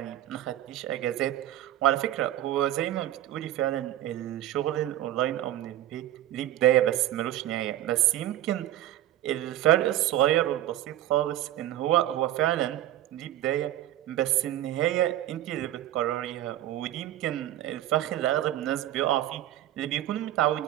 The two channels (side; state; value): left; quieter; 13.4 dB